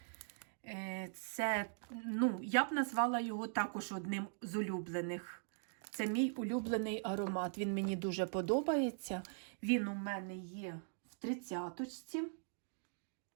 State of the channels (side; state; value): left; silent; digital silence